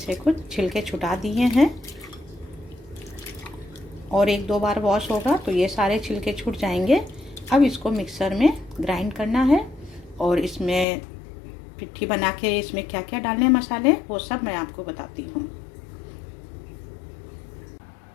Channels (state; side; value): drops out; right; at 10.9 s